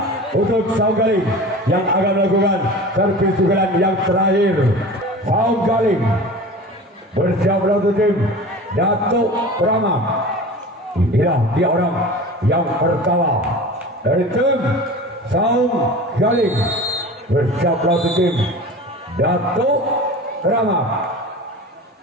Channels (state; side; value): normal; both; correlation 0.36